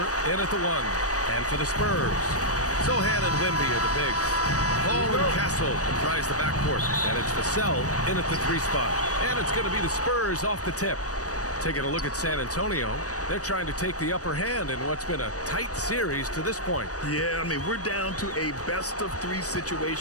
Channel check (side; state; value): right; late; 0.66 ms